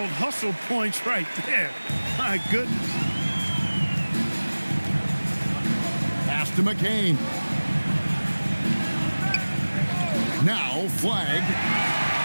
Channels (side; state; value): both; inverted; correlation -1.00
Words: hustle points right there. My goodness. Pass to McCain. Now Flag.